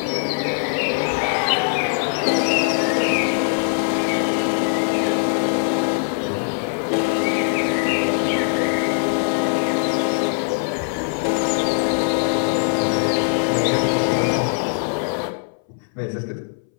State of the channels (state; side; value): silent; right; 62 dB below the other